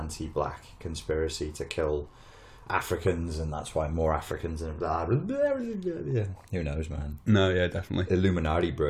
conspiracy to kill Africans, and that's why more Africans and blah, blah, blah, blah, blah. Who knows, man? No, yeah, definitely. Illuminati,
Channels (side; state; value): both; identical; correlation 1.00